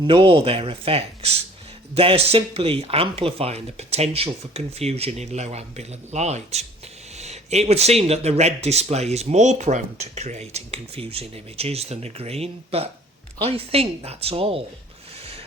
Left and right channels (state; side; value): normal; both; correlation 0.52